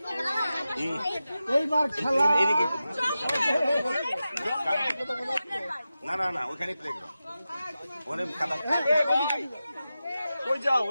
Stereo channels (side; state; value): both; inverted; correlation -0.93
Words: এইবার খেলা না না না, ওখানে প্লেগ্রাউন্ড, ওখানে খেলা। কই যাও,